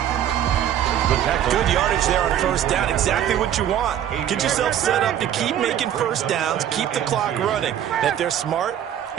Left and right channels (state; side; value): quieter; left; 10.4 dB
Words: Good yardage there on first down. Exactly what you want. Get yourself set up to keep making first downs, keep the clock running. And if they're smart,